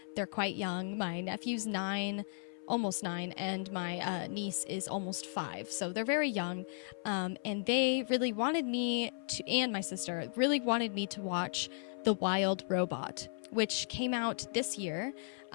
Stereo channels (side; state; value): right; silent; 54 dB below the other